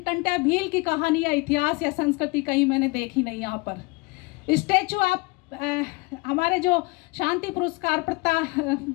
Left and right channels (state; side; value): quieter; right; 26.6 dB